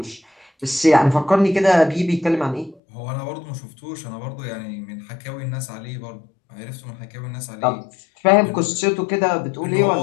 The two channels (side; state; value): right; drops out; at 2.8 s